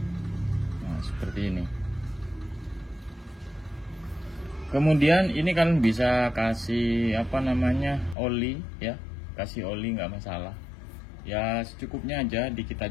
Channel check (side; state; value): right; drops out; at 8.2 s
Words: Nah, seperti ini. Kemudian ini kalian bisa kasih apa namanya, oli ya, kasih oli nggak masalah ya, secukupnya aja, dikit